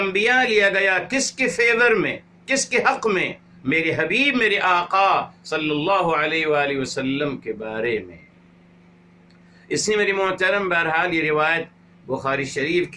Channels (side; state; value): both; identical; correlation 1.00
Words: لیا گیا کس کے فیور میں، کس کے حق میں؟ میرے حبیب میرے آقا صلی اللہ علیہ وآلہ وسلم کے بارے میں. اس نے میری محترم بہرحال یہ روایت بخاری شریف